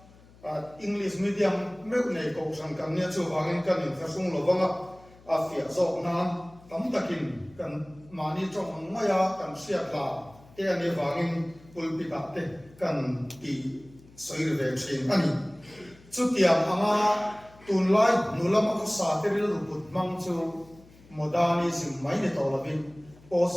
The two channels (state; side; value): noise; left; hum, 25 dB below the sound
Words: english medium me nei ko sang kan nia chu wangin kan in khasung lovanga a fia zo nan tam takin kan mani trong maya kan sia la te ani wangin pulpita te kan ti soir ve thin ani chutiam anga tunlai nulam ko sa te ril ruput mang chu modernism mai ne tawlavin